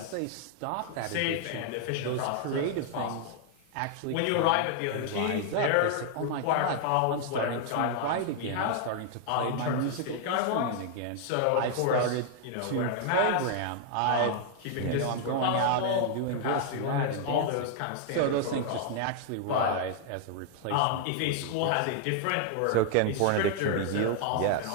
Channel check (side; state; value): both; different; correlation 0.00